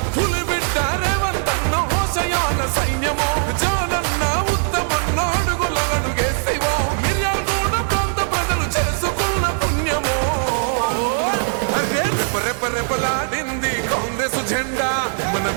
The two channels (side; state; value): left; silent; digital silence